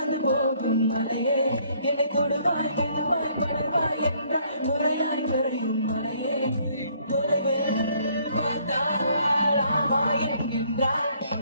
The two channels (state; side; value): inverted; both; correlation -0.64